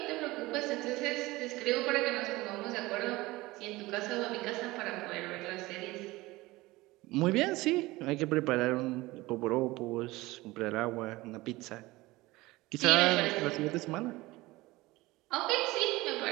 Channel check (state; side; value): quieter; left; 20.1 dB